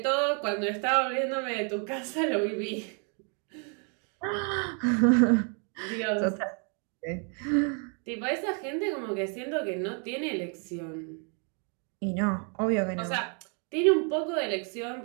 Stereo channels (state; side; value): quieter; left; 39.3 dB